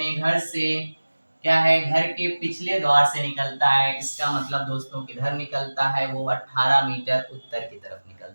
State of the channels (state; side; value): inverted; both; correlation -1.00